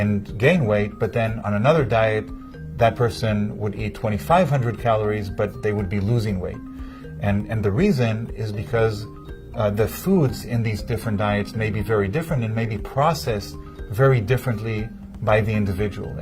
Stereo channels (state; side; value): identical; both; correlation 1.00